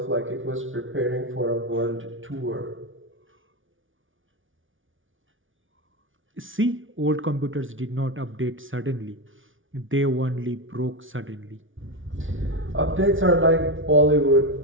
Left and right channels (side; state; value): left; late; 0.57 ms